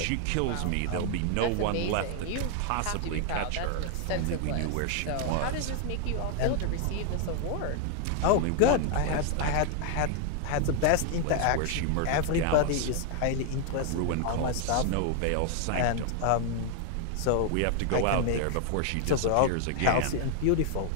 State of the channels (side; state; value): both; different; correlation 0.00